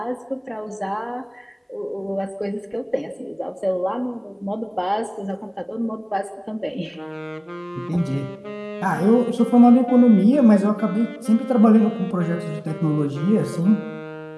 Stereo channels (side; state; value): both; identical; correlation 1.00